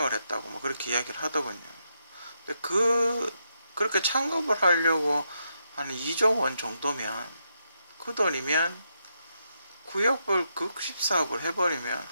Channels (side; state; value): both; inverted; correlation -0.81